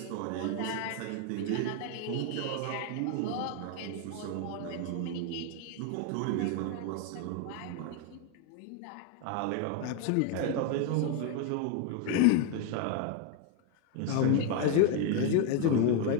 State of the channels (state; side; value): different; both; correlation 0.01